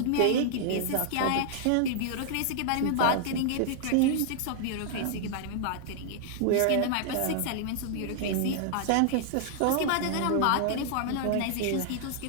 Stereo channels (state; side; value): different; both; correlation -0.01